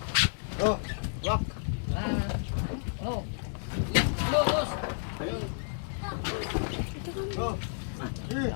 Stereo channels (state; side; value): silent; right; digital silence